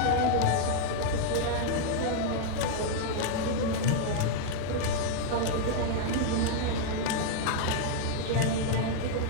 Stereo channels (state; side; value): different; both; correlation -0.01